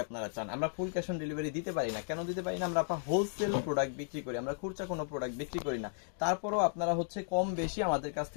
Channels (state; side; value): silent; right; digital silence